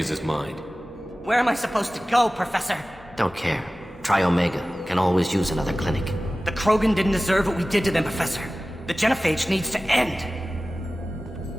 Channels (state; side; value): normal; both; correlation 0.96